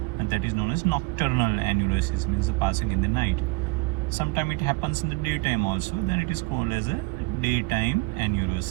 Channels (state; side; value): quieter; left; 26.4 dB